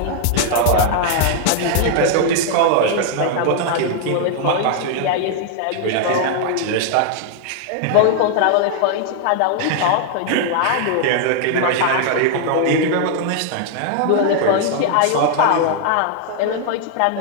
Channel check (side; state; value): both; different; correlation 0.00